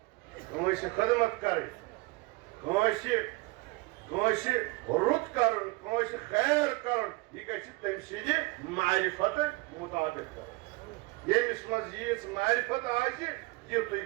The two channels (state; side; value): quieter; left; 24.3 dB